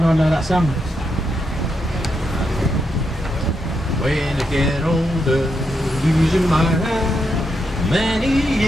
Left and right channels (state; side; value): normal; both; correlation 0.82